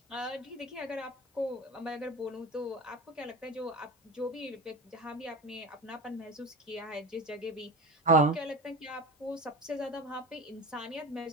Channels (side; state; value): both; normal; correlation 0.30